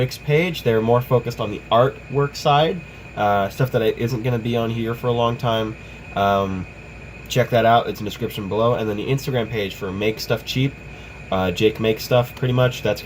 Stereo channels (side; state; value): both; identical; correlation 1.00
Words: page, they're more focused on the artwork side, stuff that isn't going to be on here for a long time. Check that out. It's in the description below. And then the Instagram page for Make Stuff Cheap, Jake Makes Stuff, pretty much, that's